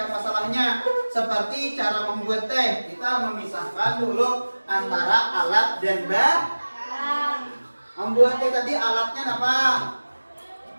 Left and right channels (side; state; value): both; inverted; correlation -1.00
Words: masalahnya. Seperti cara membuat teh, kita memisahkan dulu antara alat dan bahan. Membuat teh tadi alatnya apa?